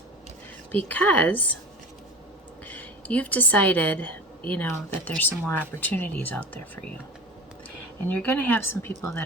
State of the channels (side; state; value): both; normal; correlation 0.33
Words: because you've decided, that there's some more opportunities out there for you. And you're going to have some people that